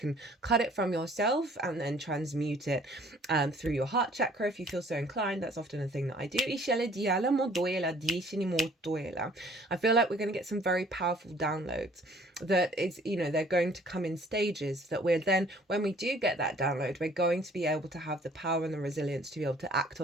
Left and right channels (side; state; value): both; normal; correlation 0.56